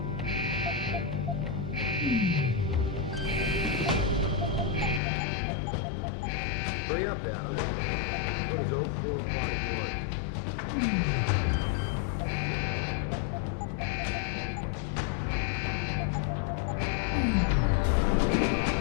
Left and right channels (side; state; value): right; drops out; at 5.0 s